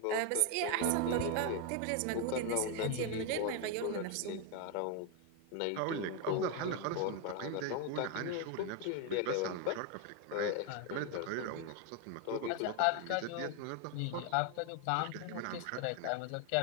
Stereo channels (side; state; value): both; different; correlation 0.01